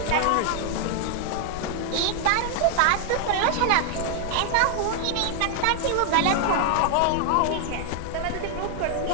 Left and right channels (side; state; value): both; different; correlation 0.00